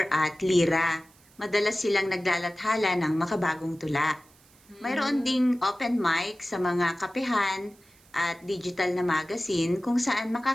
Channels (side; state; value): right; noise; hiss, 29 dB below the sound